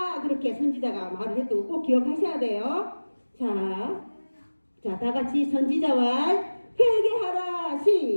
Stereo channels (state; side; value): inverted; both; correlation -1.00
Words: 그렇게 선지자가 말을 했던 거 꼭 기억하셔야 돼요. 자, 다 같이 선지자 말 회개하라.